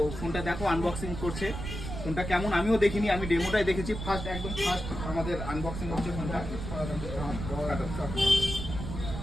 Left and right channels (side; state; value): right; noise; rumble, 6 dB below the sound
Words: ফোনটা দেখো আনবক্সিং করছে। ফোনটা কেমন আমিও দেখিনি, আমি ডেমোটাই দেখেছি, একদম ফার্স্ট আমাদের আনবক্সিং হচ্ছে ফোনটা।